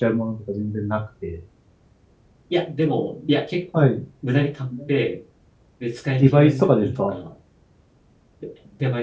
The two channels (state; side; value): identical; both; correlation 1.00